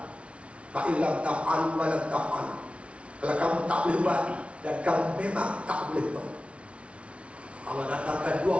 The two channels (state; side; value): late; left; 0.061 ms